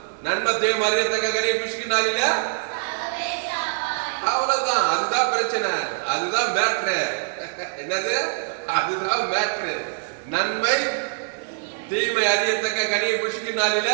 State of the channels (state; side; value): silent; left; digital silence